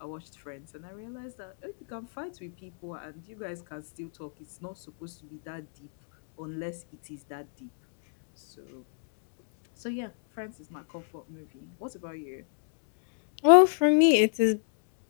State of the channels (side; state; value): right; silent; digital silence